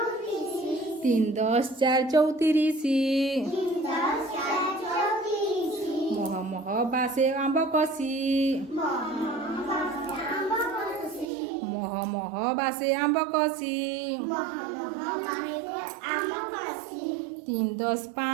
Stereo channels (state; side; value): drops out; left; at 11.3 s